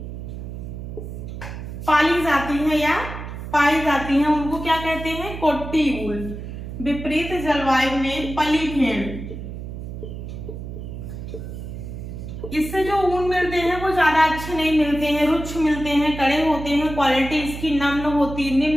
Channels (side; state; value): right; noise; hum, 9 dB below the sound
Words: पाली जाती है या पाई जाती हैं, उनको क्या कहते हैं, कोट्टी वूल। विपरीत जलवायु में पली भेड़, इससे जो ऊन मिलते हैं वो ज्यादा अच्छे नहीं मिलते हैं, रुक्ष मिलते हैं, कड़े होते हैं, क्वालिटी इसकी